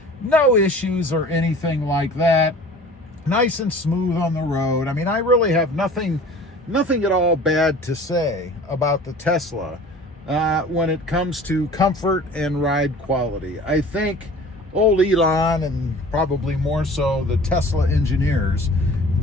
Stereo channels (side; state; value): both; normal; correlation 0.44